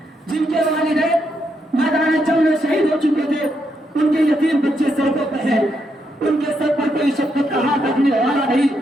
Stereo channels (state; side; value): normal; both; correlation 0.80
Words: جن کے والدین میدان جنگ میں شہید ہو چکے تھے، ان کے یتیم بچے سڑکوں پہ ہیں، ان کے سر پر کوئی شفقت کا ہاتھ رکھنے والا نہیں.